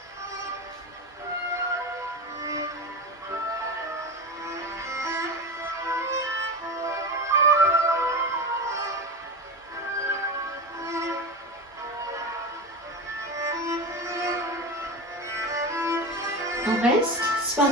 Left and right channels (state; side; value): normal; both; correlation 0.23